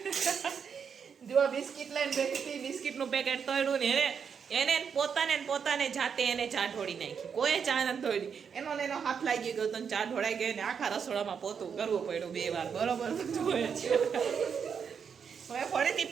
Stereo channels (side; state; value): left; quieter; 6.8 dB